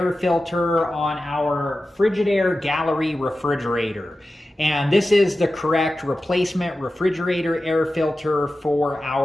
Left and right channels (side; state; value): both; normal; correlation 0.94